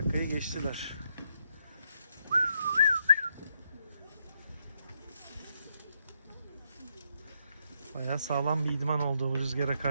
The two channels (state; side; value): inverted; both; correlation -0.77